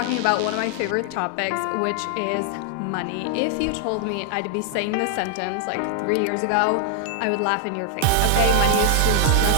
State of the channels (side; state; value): both; different; correlation 0.00